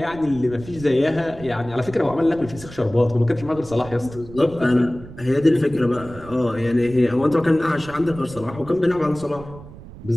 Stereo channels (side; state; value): right; noise; rumble, 16 dB below the sound